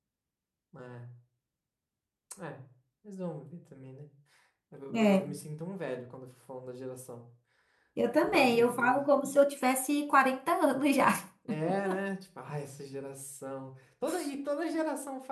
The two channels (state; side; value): identical; both; correlation 1.00